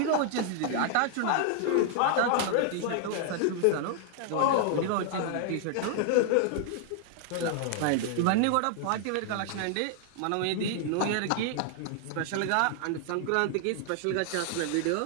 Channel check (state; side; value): different; both; correlation 0.00